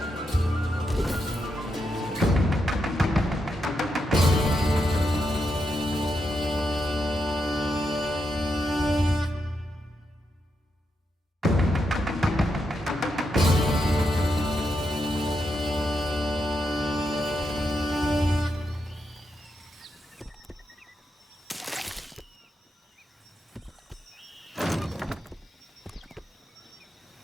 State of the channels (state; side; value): normal; both; correlation 0.83